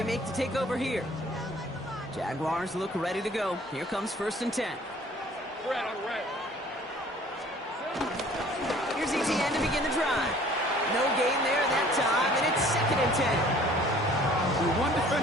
make to take over here. Jaguars look ready to go. Here comes first and 10. Red on red. Here's ETN to begin the drive. No gain there that time, and it's second and 10. The one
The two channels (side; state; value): both; normal; correlation 0.53